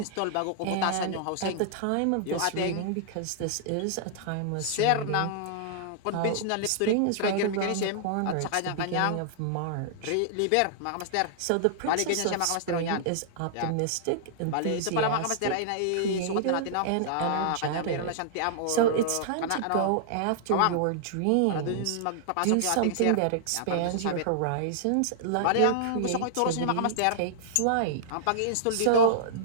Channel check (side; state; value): both; different; correlation -0.01